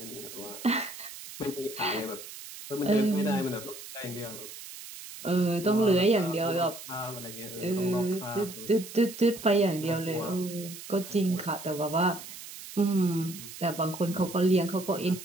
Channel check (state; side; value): noise; right; hiss, 13 dB below the sound